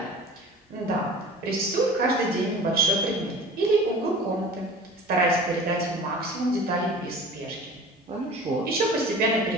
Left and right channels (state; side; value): normal; both; correlation 0.41